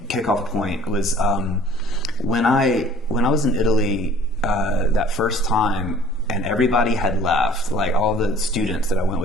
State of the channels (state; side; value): normal; both; correlation 0.52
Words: kickoff point, was when I was in Italy that first time, and everybody had left. Like, all the students that I went